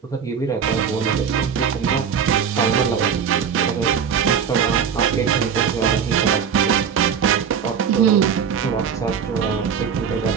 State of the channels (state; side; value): quieter; left; 7.2 dB